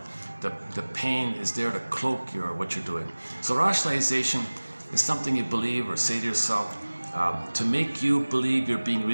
The pain is there to cloak what you're doing. So rationalization is something you believe or say to yourself to make you believe you're being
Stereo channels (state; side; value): inverted; both; correlation -1.00